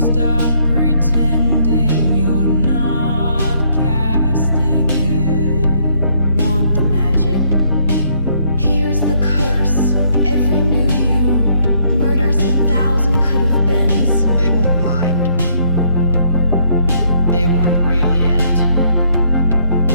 pretending you're not casting it. Want the magic? Here's the curse. Every new you murders 1,000 could have been. They won't mind. They weren't real yet.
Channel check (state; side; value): inverted; both; correlation -0.68